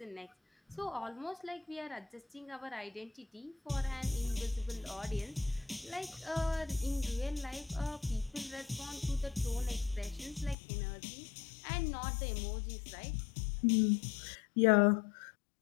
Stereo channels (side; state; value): right; drops out; at 10.6 s